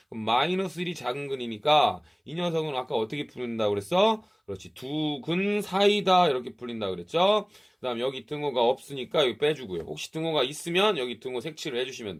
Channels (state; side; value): identical; both; correlation 1.00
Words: 그럼 마이너스 1이 작은 근이니까 이 녀석은 아까 어떻게 풀린다고 그랬어? 그렇지. 두 근 사이다 이렇게 풀린다고 그랬죠? 그 다음 여기 등호가 없으니까 여기 빼주고요. 혹시 등호가 있으면 여기 등호 색칠을 해주시면